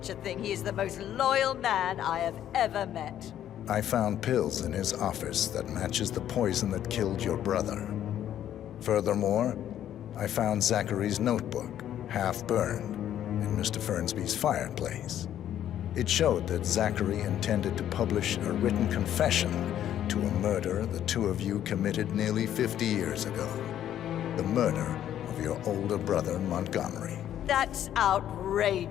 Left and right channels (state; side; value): quieter; right; 11.0 dB